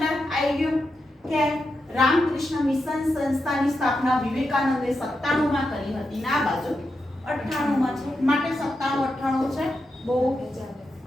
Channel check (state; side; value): normal; both; correlation 0.86